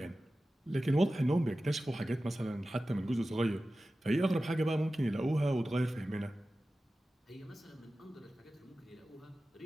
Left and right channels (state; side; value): normal; both; correlation 0.95